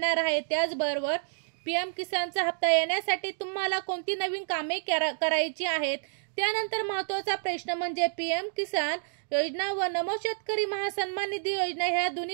आहेत? त्याचबरोबर पीएम किसानचा हप्ता येण्यासाठी तुम्हाला कोणती नवीन कामे करायची आहेत? त्यानंतर महत्त्वाचा प्रश्न म्हणजे पीएम किसान योजना व नमो शेतकरी महासन्मान निधी योजना ह्या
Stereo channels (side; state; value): left; silent; digital silence